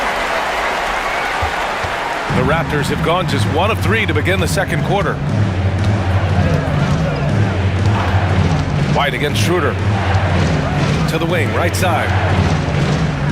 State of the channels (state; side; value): identical; both; correlation 1.00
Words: The Raptors have gone just 1 of 3 to begin the second quarter. White against Schroeder. To the wing, right side.